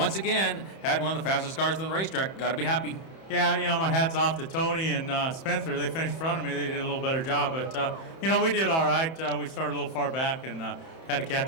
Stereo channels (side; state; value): right; late; 31 ms